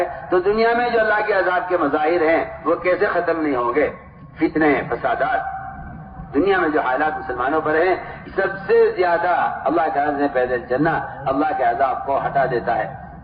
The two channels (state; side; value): identical; both; correlation 1.00